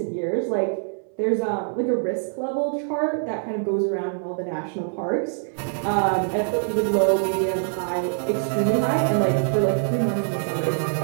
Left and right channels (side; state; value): left; silent; 62 dB below the other